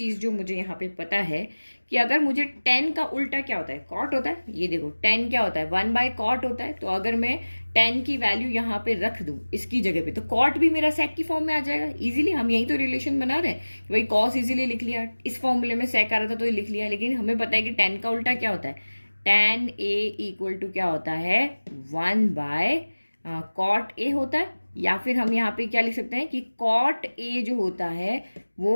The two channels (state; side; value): inverted; both; correlation -1.00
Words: जो मुझे यहाँ पे पता है कि अगर मुझे tan का उल्टा क्या होता है, cot होता है। ये देखो tan क्या होता है, 1/cot होता है। तो अगर मैं tan की वैल्यू यहाँ पे रख दूं इसकी जगह पे, तो cot भी मेरा sec की फॉर्म में आ जाएगा इजीली। हम यही तो रिलेशन बना रहे हैं कि भाई cos इजीली लिख लिया, इस फॉर्मूले में sec आ रहा था तो ये लिख लिया। लेकिन हमें पता है कि tan का उल्टा क्या होता है, tan A इक्वल टू क्या होता है, 1/cot A होता है। या फिर हम यहाँ पे क्या लिख सकते हैं कि cot A जो होता है वो